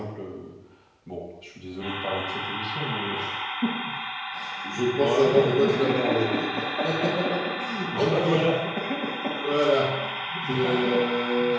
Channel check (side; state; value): both; identical; correlation 1.00